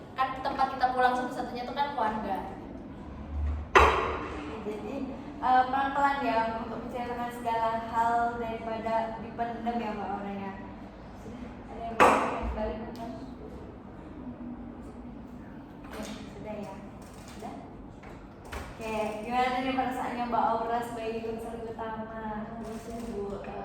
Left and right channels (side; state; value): both; identical; correlation 1.00